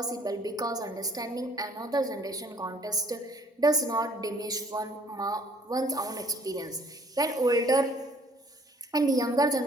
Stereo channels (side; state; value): both; normal; correlation 0.59